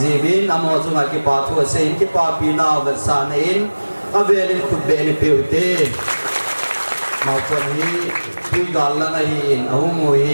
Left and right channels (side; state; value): both; inverted; correlation -1.00